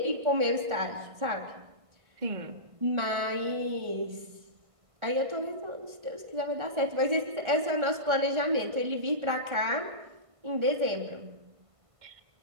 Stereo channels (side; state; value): left; late; 1.5 ms